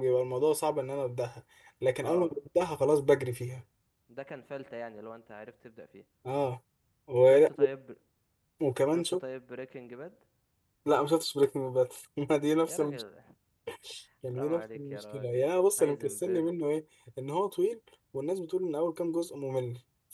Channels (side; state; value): both; identical; correlation 1.00